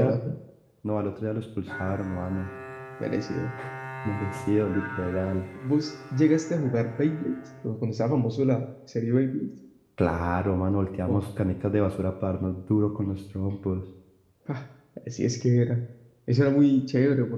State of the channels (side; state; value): both; identical; correlation 1.00